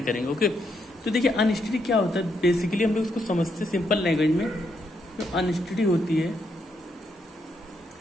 करेंगे। ओके, तो देखिए अनस्टडी क्या होता है, बेसिकली हम लोग इसको समझते सिंपल लैंग्वेज में। जो अनस्टडी होती है,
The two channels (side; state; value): both; normal; correlation 0.78